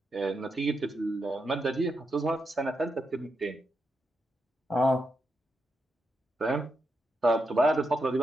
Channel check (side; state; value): both; normal; correlation 0.85